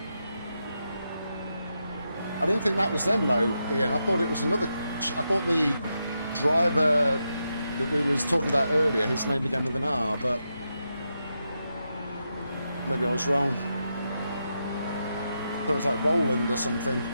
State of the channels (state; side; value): inverted; both; correlation -0.85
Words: I didn't think that was them though, Ian. I thought it was another. I thought the driver that we was talking about earlier, his name began with an R, but maybe I was wrong. I thought it was like Roland or something.